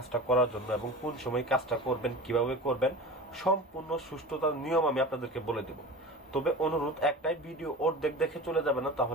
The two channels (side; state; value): both; normal; correlation 0.33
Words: করার জন্য এবং কোন সময় কাজটা করবেন, কিভাবে করবেন, সম্পূর্ণ সুষ্ঠুতার নিয়ম আমি আপনাদেরকে বলে দেব। তবে অনুরোধ একটাই, ভিডিও অর্ধেক দেখে চলে যাবেন না,